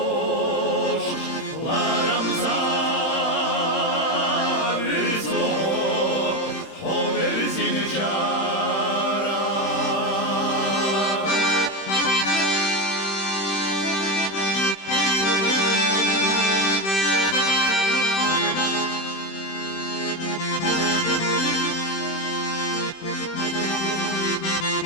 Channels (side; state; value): right; late; 31 ms